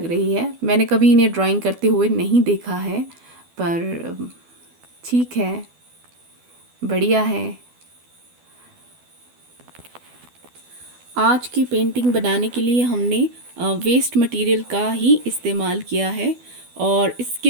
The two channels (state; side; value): late; left; 12 ms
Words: रही है। मैंने कभी इन्हें ड्राइंग करते हुए नहीं देखा है, पर ठीक है, बढ़िया है। आज की पेंटिंग बनाने के लिए हमने वेस्ट मटेरियल का ही इस्तेमाल किया है और इसके